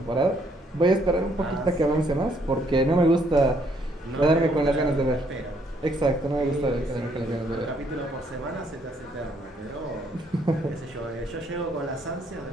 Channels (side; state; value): both; normal; correlation 0.69